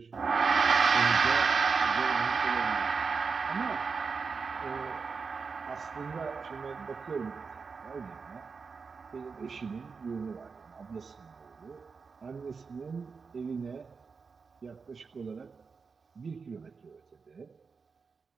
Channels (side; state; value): left; quieter; 5.1 dB